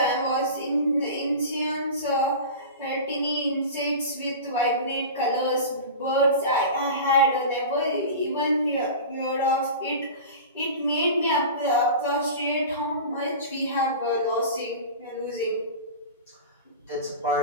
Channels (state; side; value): inverted; both; correlation -0.32